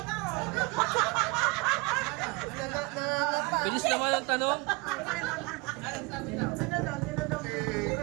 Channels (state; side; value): quieter; left; 25.8 dB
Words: Bilis naman ang tanong.